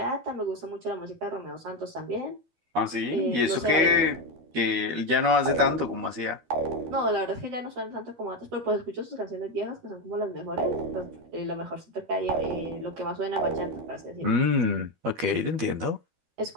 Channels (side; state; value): left; late; 12 ms